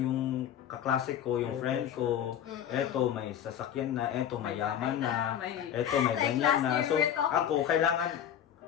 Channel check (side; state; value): right; quieter; 9.8 dB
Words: kaklase ko, yung May friend pressure. ko, eto may sasakyan na, eto mayaman na, May... eto may Like ganyan last na. year So we were talking- ako